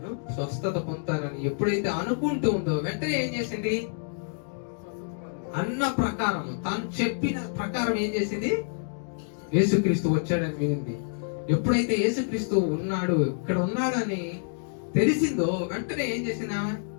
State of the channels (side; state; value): right; silent; digital silence